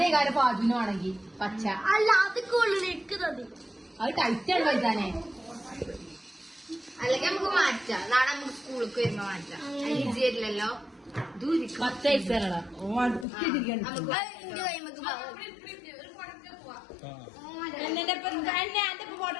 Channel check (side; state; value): right; drops out; at 13.2 s